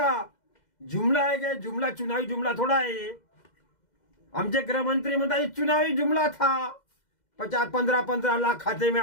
जुमला आहे काय. जुमला चुनावी जुमला थोडा आहे. आमचे गृहमंत्री म्हणतात चुनावी जुमला था. 15 लाख खाते में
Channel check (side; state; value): right; late; 2.1 ms